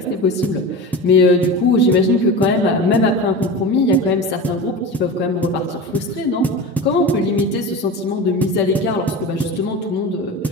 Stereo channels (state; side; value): normal; both; correlation 0.29